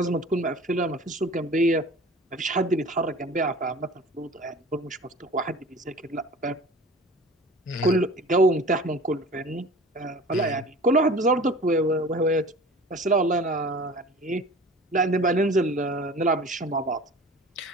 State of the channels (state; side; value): normal; both; correlation 0.42